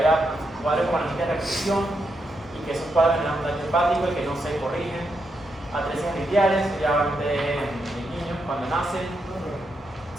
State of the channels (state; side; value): normal; both; correlation 0.82